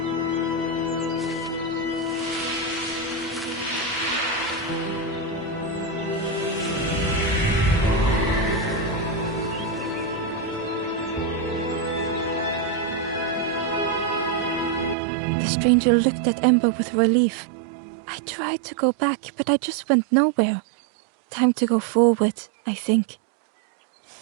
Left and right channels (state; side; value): drops out; left; at 15.0 s